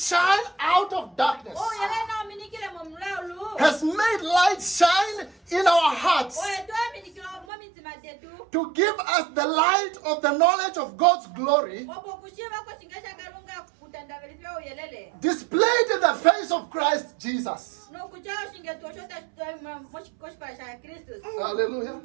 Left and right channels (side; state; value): left; drops out; at 7.5 s